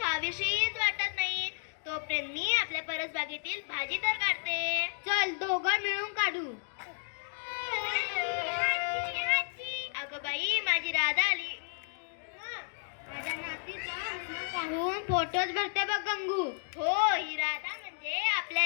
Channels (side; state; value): right; silent; digital silence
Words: वाटत नाही. तोपर्यंत मी आपल्या परसबागेतील भाजी तर काढते. चल दोघं मिळून काढू. अगं बाई माझी राधा आली. माझ्या नातीचा हसणं पाहून फोटोच भरते बघ गंगू. हो ही राधा म्हणजे